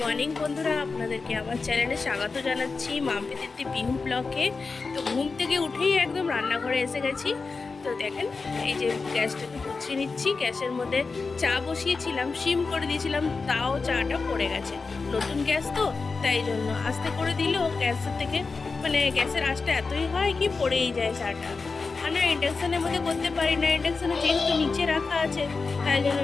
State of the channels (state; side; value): quieter; right; 4.3 dB